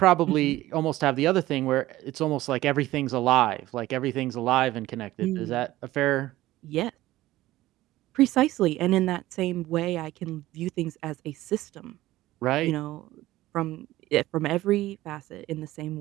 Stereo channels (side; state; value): left; quieter; 16.4 dB